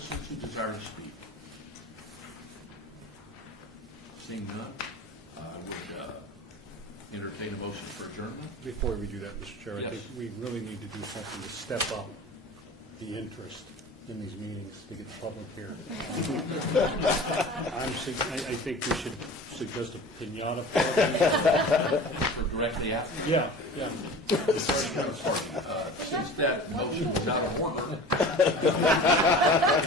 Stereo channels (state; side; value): normal; both; correlation 0.38